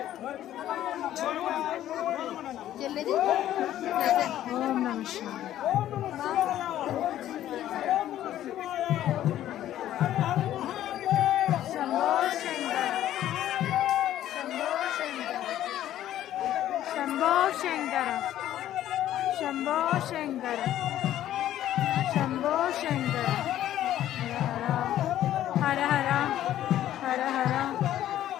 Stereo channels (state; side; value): quieter; right; 12.4 dB